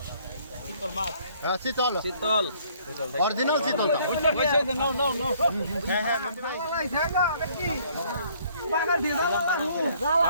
শীতল মাছ হ্যাঁ শীতল শীতল অরিজিনাল শীতল নাও নাও নাও হ্যাঁ হ্যাঁ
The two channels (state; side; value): inverted; both; correlation -0.62